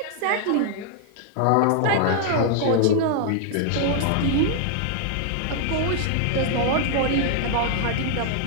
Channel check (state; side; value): different; both; correlation 0.00